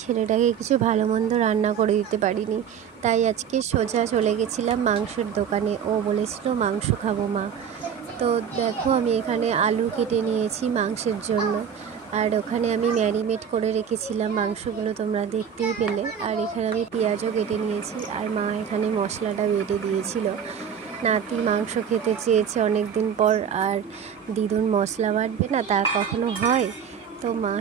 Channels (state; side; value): quieter; left; 7.9 dB